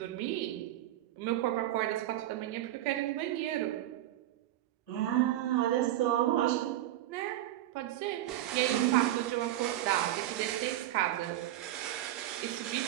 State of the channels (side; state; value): left; quieter; 13.8 dB